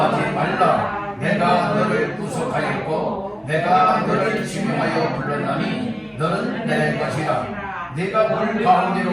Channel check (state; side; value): identical; both; correlation 1.00